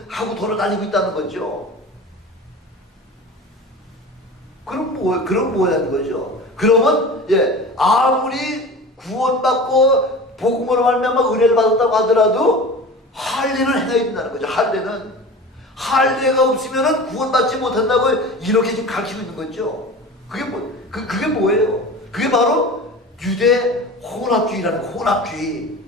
하고 돌아다니고 있다는 거죠. 그럼 뭐라는 거죠? 그러면 예, 아무리 구원받고 복음으로 말미암아 은혜를 받았다고 하더라도 할례는 행해야 된다는 거죠. 할례가 없으면은 구원받지 못한다고 이렇게 지금 가르치고 있는 거죠. 그게 뭐예요? 그게 바로 유대 혼합주의라는 혼합주의.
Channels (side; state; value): both; normal; correlation 0.35